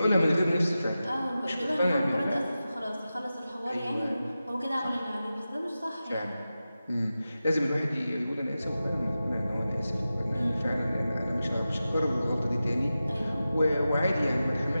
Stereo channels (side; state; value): both; inverted; correlation -0.93